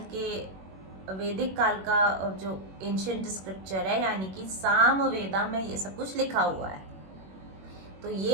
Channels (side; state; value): left; late; 21 ms